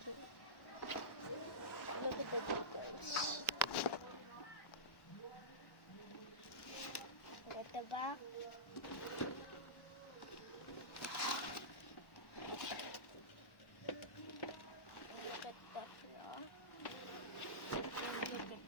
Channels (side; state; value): right; late; 1.1 ms